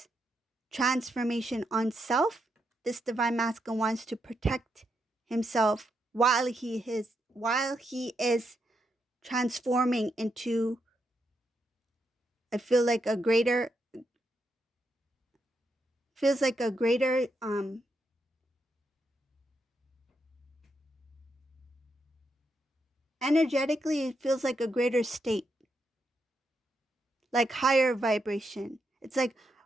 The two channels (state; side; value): normal; both; correlation 0.81